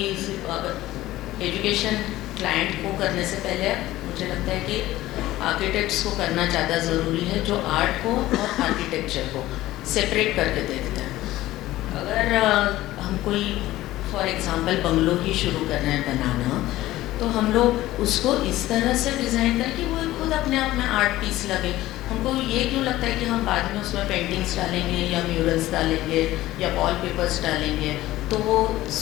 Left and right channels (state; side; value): quieter; right; 16.1 dB